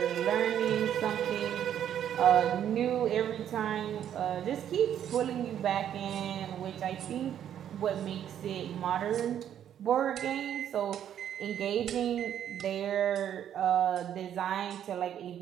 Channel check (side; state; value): left; quieter; 10.0 dB